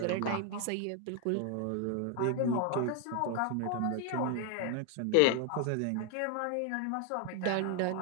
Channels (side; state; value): both; different; correlation 0.00